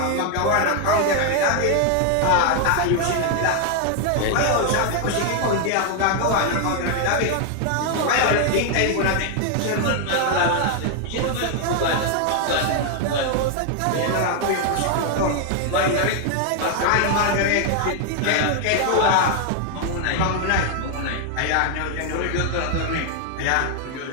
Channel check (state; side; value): different; both; correlation 0.00